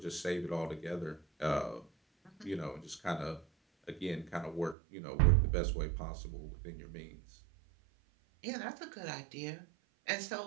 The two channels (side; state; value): left; drops out; at 4.8 s